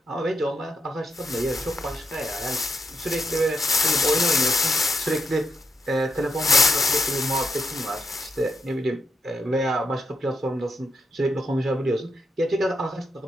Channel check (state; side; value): normal; both; correlation 0.81